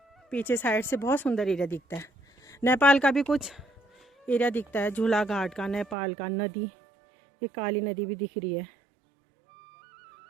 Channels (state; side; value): drops out; left; at 6.0 s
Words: पीछे साइड से बहुत सुंदर एरिया दिखता है। नेपाल का भी कुछ एरिया दिखता है, झूला घाट का, नेपाल का, नदी, ये काली नदी भी दिख रही है